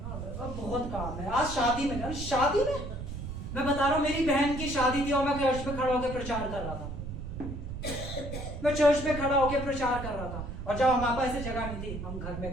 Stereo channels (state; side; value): noise; right; rumble, 7 dB below the sound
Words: अब बहुत काम है। आज शादी में, शादी में मैं बता रहा हूं, मेरी बहन की शादी थी और मैं चर्च में खड़ा होकर प्रचार कर रहा था। मैं चर्च में खड़ा होकर प्रचार कर रहा था, और जब हमारे पास ऐसी जगह नहीं थी हम घर